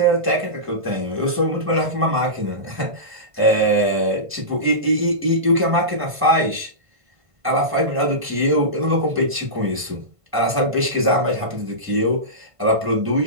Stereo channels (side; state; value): left; late; 1.5 ms